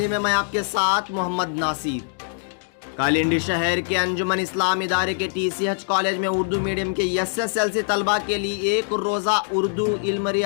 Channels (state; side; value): silent; right; 60 dB below the other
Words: में। मैं आपके साथ मोहम्मद नासिर। कालिंडी शहर के अंजुमन इस्लाम इदारे के TCH कॉलेज में उर्दू मीडियम के SSLC तलबा के लिए एक रोज़ा उर्दू, इल्म